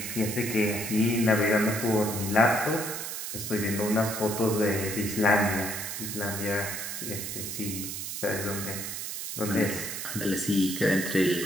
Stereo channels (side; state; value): right; noise; hiss, 5 dB below the sound